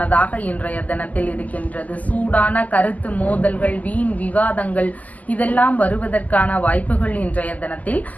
இன்றைய தினத்தில் இருக்கின்றது. சூடான கருத்து மோதல்கள், வீண் விவாதங்கள் இதெல்லாம் வருவதற்கான வாய்ப்புகள் இன்றைய தினத்தில்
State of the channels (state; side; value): late; right; 0.077 ms